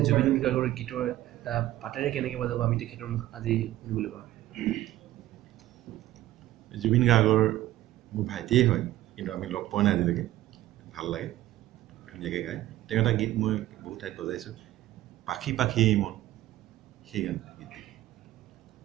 গাৰ্গৰ গীতৰ এটা পাতেৰে কেনেকৈ বজাব আমি তেখেতৰ মুখ আজি শুনিবলৈ পাওঁ জুবিন গাৰ্গৰ মোৰ ভাইটিয়ে হয় কিন্তু আমি লগ পোৱা নাই আজিলৈকে ভাল লাগে ধুনীয়াকৈ গায় তেওঁ এটা গীত মই বহুত ঠাইত বজাইছোঁ পাখি পাখি মন সেই গান গীত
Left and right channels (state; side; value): quieter; left; 14.9 dB